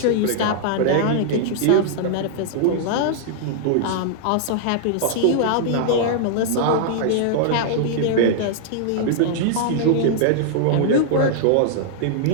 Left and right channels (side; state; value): both; different; correlation -0.01